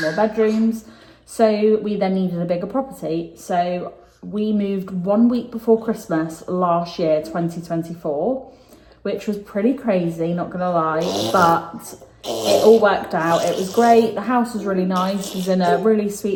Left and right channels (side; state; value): both; identical; correlation 1.00